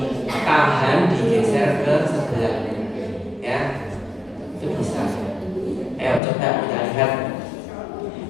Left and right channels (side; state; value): right; drops out; at 6.2 s